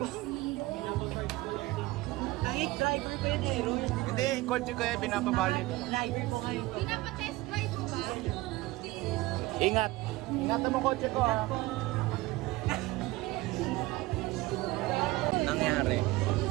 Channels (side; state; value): left; quieter; 19.8 dB